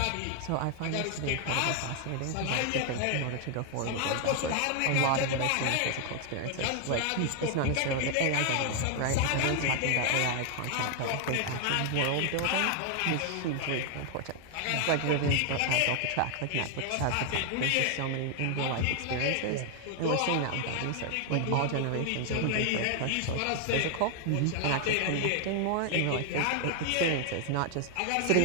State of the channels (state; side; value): different; both; correlation 0.00